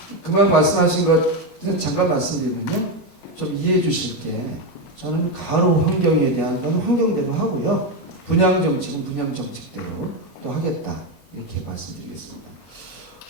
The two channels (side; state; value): right; late; 25 ms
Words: 그만 말씀하신 것 잠깐 말씀드리면요. 좀 이해해 주실 게 저는 가로 환경에 대한 건 환경대로 하고요. 분양 정책은 분양 정책대로 또 하겠다. 이렇게 말씀드리겠습니다.